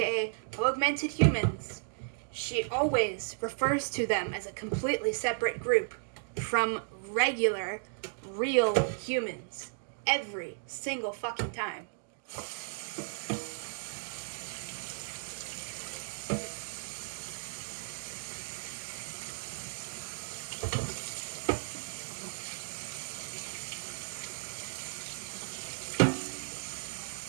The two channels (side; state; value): left; silent; digital silence